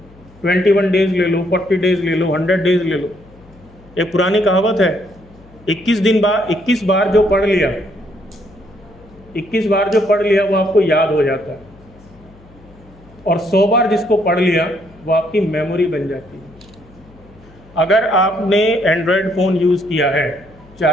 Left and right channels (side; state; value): left; noise; hum, 25 dB below the sound